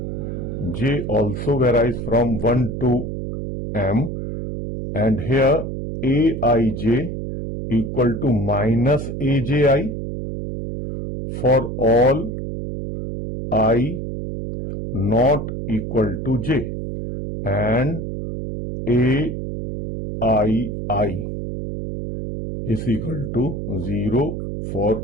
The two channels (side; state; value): right; noise; hum, 5 dB below the sound